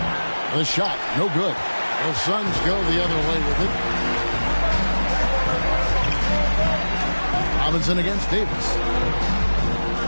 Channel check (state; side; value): inverted; both; correlation -1.00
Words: The shot, no good. The Suns go the other way with it. Robinson against Davis.